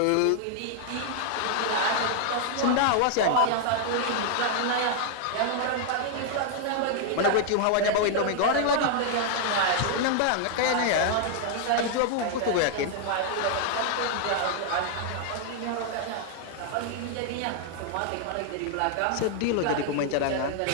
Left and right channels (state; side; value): different; both; correlation 0.00